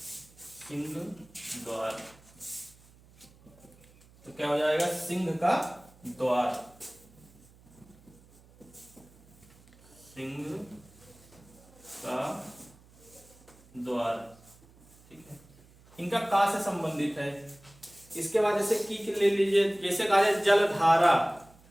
सिंह द्वार, तो क्या हो जाएगा? सिंह का द्वार, सिंह का द्वार। ठीक है। इनका का से संबंधित है। इसके बाद जैसे की ले लीजिए, जैसे कहा जाए जलधारा,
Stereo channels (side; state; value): right; noise; hum, 26 dB below the sound